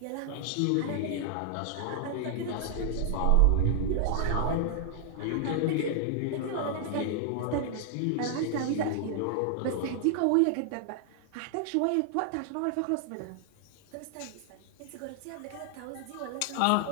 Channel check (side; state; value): both; different; correlation 0.00